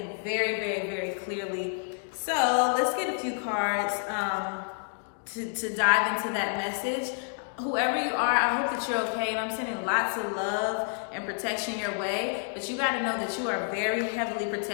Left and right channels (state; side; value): silent; right; 59 dB below the other